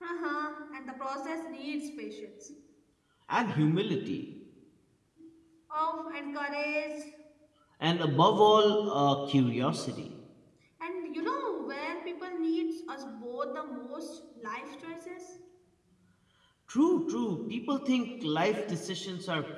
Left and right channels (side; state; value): both; identical; correlation 1.00